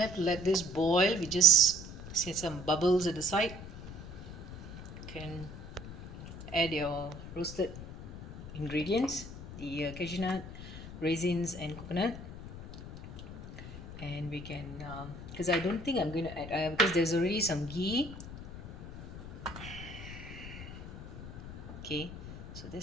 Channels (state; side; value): noise; left; rumble, 11 dB below the sound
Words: to let this boil, we just see some bubbles at the side. You can add your roasted ingredients, the cashew nut, raisins and coconut, and we can because I don't think I'm going to add because there's already some ghee. Okay, so